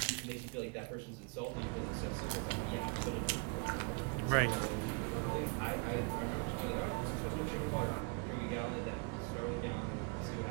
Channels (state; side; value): quieter; left; 31.7 dB